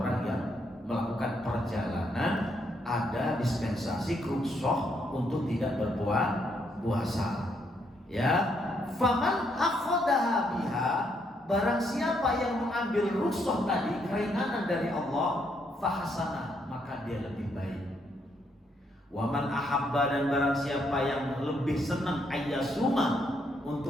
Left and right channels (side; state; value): both; normal; correlation 0.74